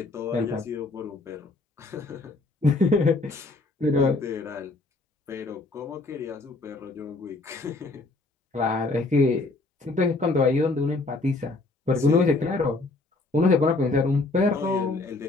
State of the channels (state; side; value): quieter; right; 3.2 dB